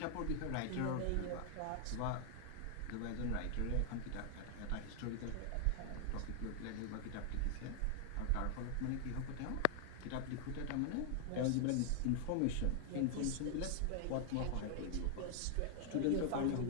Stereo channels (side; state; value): both; different; correlation 0.00